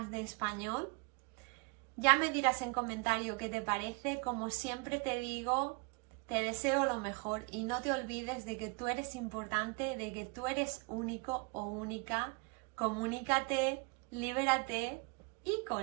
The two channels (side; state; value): left; quieter; 31.4 dB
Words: de español. Ya me dirás en comentario qué te parece. Como siempre te digo, te deseo lo mejor y no te olvides de que tú eres importante, de que tú eres único o única. Comunícate, libérate y